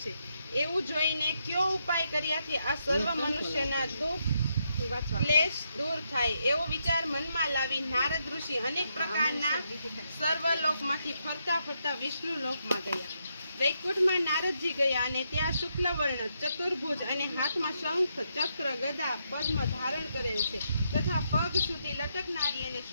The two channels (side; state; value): both; inverted; correlation -0.80